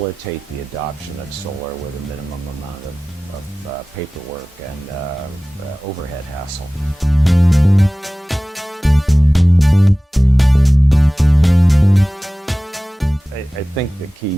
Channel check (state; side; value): normal; both; correlation 0.97